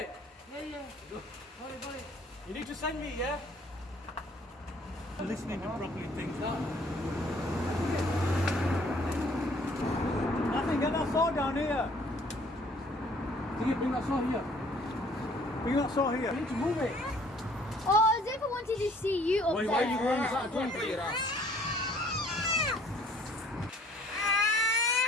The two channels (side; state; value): both; normal; correlation 0.58